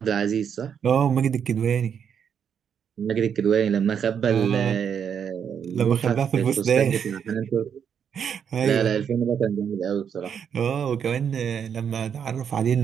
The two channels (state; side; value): quieter; left; 7.8 dB